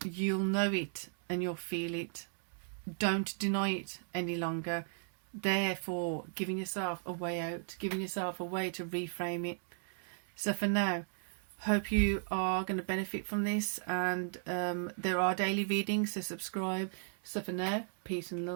you'll know it and you'll feel it. Don't deny it any longer. Therefore, giving yourself a way out, giving yourself a way to reframe it. So for now, hope you are going to benefit from this, and there are daily readings, so subscribe. So for now, peace and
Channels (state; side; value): silent; left; digital silence